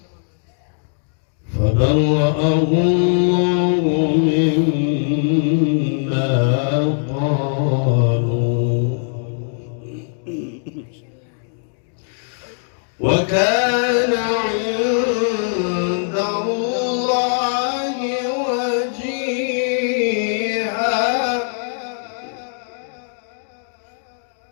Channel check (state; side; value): silent; right; digital silence